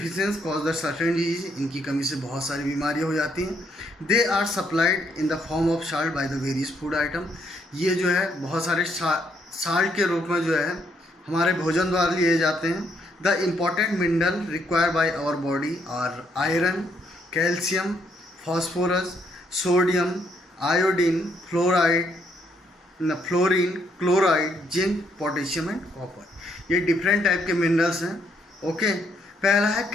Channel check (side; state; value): both; normal; correlation 0.72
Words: cause the certain disease. इनकी कमी से बहुत सारी बीमारियां हो जाती हैं. They are supplied in the form of salt by the various food item. ये जो है बहुत सारे साल्ट के रूप में जो है हमारे भोजन द्वारा लिए जाते हैं. The important mineral required by our body are iron, calcium, phosphorus, sodium, iodine, fluorine, chloride, zinc, potassium and copper. ये डिफरेंट टाइप के मिनरल्स हैं. ओके. पहला है